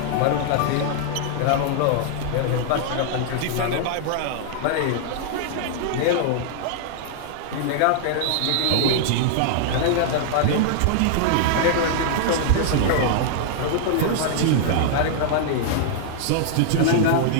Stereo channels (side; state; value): both; different; correlation -0.01